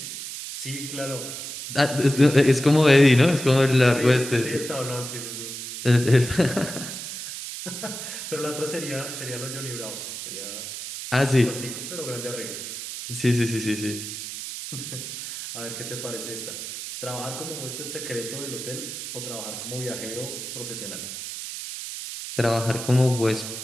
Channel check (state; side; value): noise; right; hiss, 8 dB below the sound